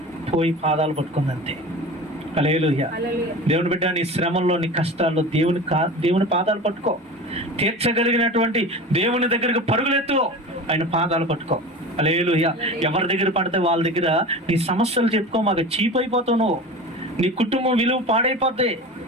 పోయి పాదాలు పట్టుకుందంతే. హల్లెలూయా. దేవుని బిడ్డ, నీ శ్రమంలో, నీ కష్టాల్లో దేవుని పాదాలు పట్టుకో. తీర్చగలిగినటువంటి దేవుని దగ్గరకు పరుగులెత్తు, ఆయన పాదాలు పట్టుకో. హల్లెలూయా. ఎవరి దగ్గర పడితే వాళ్ళ దగ్గర నీ సమస్యలు చెప్పుకో, మాకు చీప్ అయిపోతావు నువ్వు, నీ కుటుంబం విలువ పాడైపోద్ది.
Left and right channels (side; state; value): both; normal; correlation 0.33